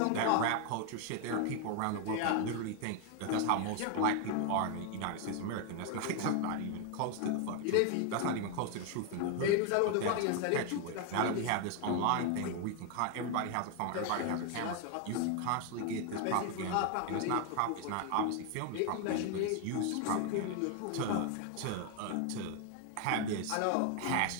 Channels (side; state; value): both; different; correlation 0.01